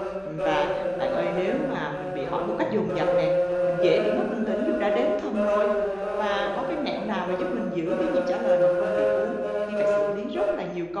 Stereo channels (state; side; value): noise; left; hum, 29 dB below the sound